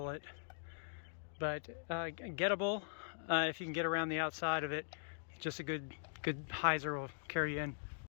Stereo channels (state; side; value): silent; right; digital silence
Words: it. But gettable if you can get around the outside of it. Just a good hyzer will carry you in.